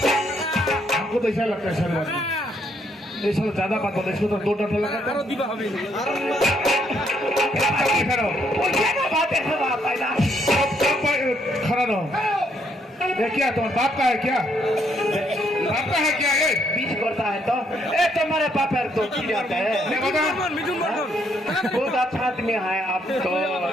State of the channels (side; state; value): both; normal; correlation 0.72